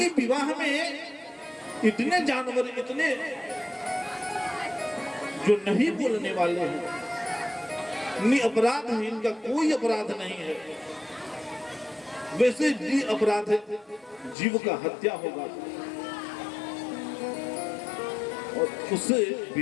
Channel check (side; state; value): right; drops out; at 14.4 s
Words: विवाह में इतने जानवर, इतने जो नहीं बोलने वाले हैं, निरपराध है, इनका कोई अपराध नहीं है, वैसे भी अपराध है, जीव का हत्या होगा और उससे